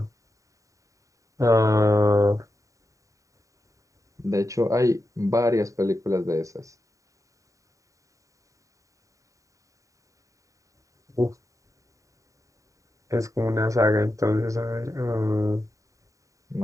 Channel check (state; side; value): late; left; 0.16 ms